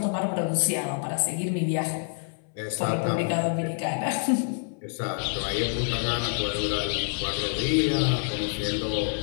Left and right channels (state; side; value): silent; right; 60 dB below the other